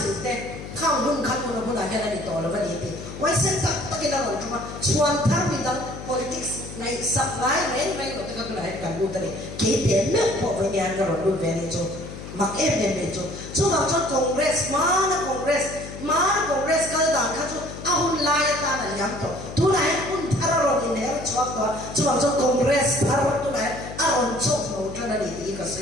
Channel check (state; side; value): noise; left; hum, 11 dB below the sound